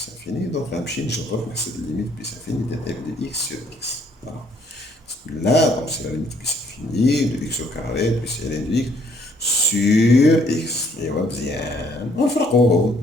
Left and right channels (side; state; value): both; normal; correlation 0.65